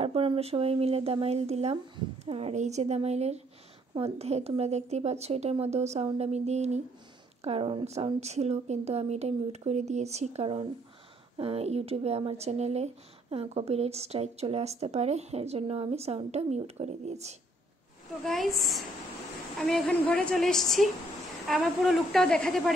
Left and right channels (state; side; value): normal; both; correlation 0.66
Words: আমরা সবাই মিলে দামাইল দিলাম। আর এই যে দামাইলের মধ্যে তোমরা দেখতেই পাচ্ছ, এটার মধ্যেও সাউন্ড আমি দিইনি কারণ সাউন্ড ছিল, কিন্তু আমি এটা মিউট করে দিয়েছি কারণ ইউটিউবে আমার চ্যানেলে কপিরাইট স্ট্রাইক চলে আসতে পারে, এর জন্য আমি সাউন্ডটা মিউট করে দিয়েছি। তো গাইস, আমি এখন ঘরে চলে এসেছি। আমার পুরো লুকটাও দেখাতে